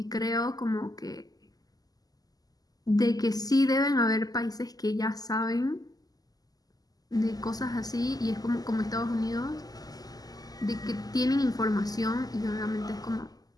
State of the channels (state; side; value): late; right; 0.18 ms